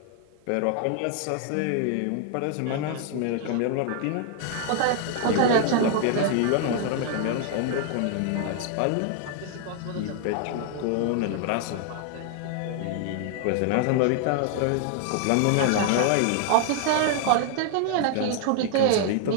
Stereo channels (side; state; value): both; different; correlation 0.00